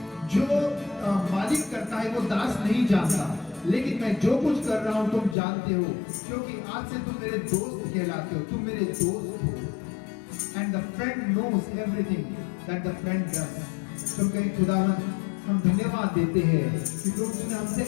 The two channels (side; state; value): right; drops out; at 5.4 s